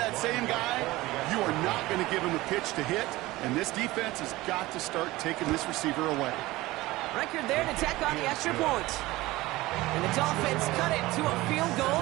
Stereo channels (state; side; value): quieter; left; 18.9 dB